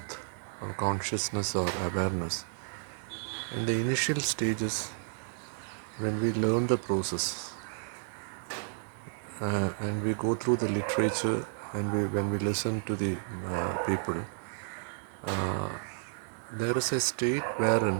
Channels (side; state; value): left; silent; 57 dB below the other